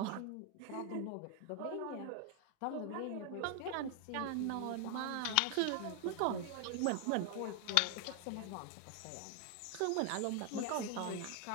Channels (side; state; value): both; different; correlation 0.00